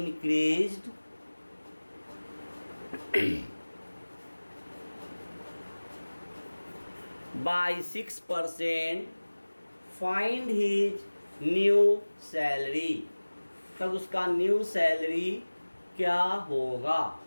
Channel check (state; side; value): inverted; both; correlation -1.00